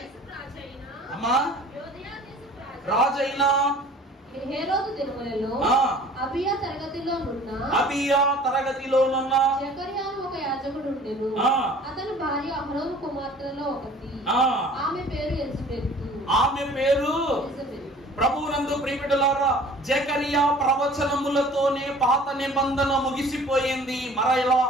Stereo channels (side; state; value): both; normal; correlation 0.49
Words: అమ్మా, రాజైన హేరోదు దినములలో అబియా తరగతిలోనున్న జకర్యాను ఒక యాజకుడు ఉండెను. అతని భార్య అహరోను కుమార్తెలలో ఒకటి. ఆమె పేరు ఎలిజబెతు. ప్రభువునందు ప్రియబిడ్డలారా, జకరియా ప్రవచనములతోనే పాత నిబంధన ముగిసిపోయింది. మరలా